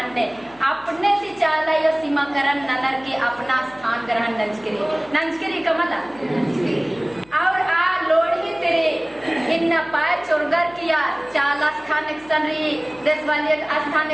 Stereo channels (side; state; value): left; noise; hum, 27 dB below the sound